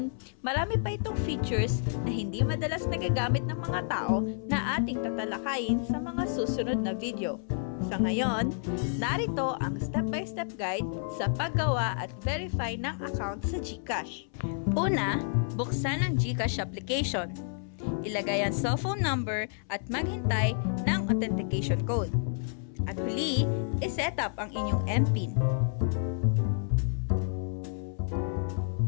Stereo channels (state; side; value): silent; right; 58 dB below the other